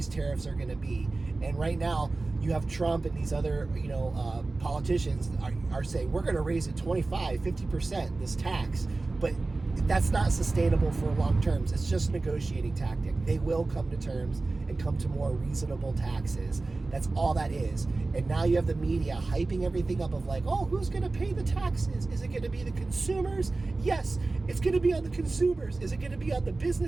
tariffs are going to be. And right now, you have Trump and these other, politicians are saying, we're going to raise it 25, 50%, this tax. But that's not sustainable for long terms. It's just a negotiating tactic. They will come to terms and come to more reasonable taxes. That's all that is. And now you have the media hyping everything up of like, oh, who's going to pay the taxes? Is it going to be the consumers? Yes, it's going to be on the consumers. Is it going to be on the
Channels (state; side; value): quieter; left; 3.4 dB